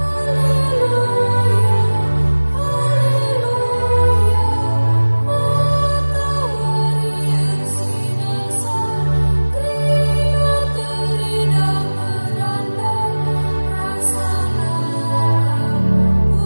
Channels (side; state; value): both; inverted; correlation -1.00